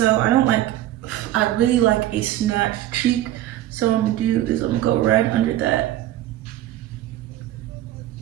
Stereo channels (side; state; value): left; quieter; 13.9 dB